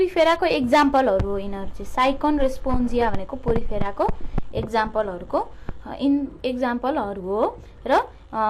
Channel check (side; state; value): both; identical; correlation 1.00